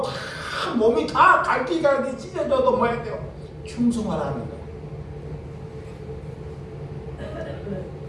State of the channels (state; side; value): identical; both; correlation 1.00